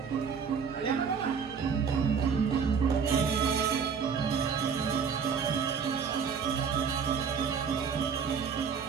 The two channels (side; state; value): left; quieter; 6.4 dB